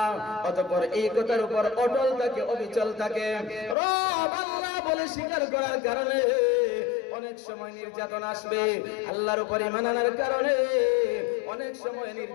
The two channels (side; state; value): right; drops out; at 3.8 s